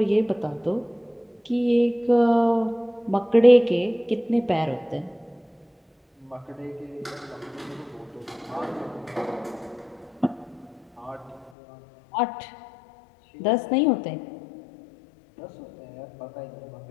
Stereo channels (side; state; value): right; drops out; at 11.5 s